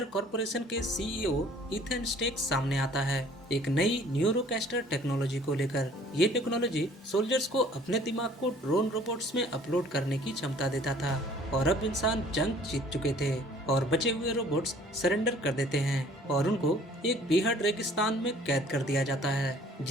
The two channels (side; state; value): both; normal; correlation 0.54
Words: कॉर्पोरेशन के सीईओ इथन स्टेक सामने आता है एक नई न्यूरोकैस्टर टेक्नोलॉजी को लेकर। ये टेक्नोलॉजी सोल्जर्स को अपने दिमाग को ड्रोन रोबोट्स में अपलोड करने की क्षमता देता था। और अब इंसान जंग जीत चुके थे और बचे हुए रोबोट्स सरेंडर कर देते हैं और उनको एक बेहद रेगिस्तान में कैद कर दिया जाता है